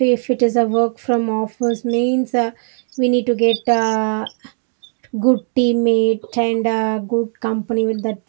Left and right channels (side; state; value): left; silent; 57 dB below the other